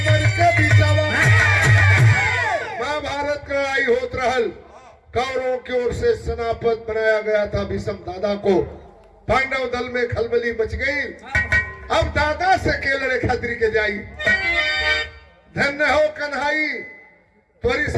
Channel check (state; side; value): identical; both; correlation 1.00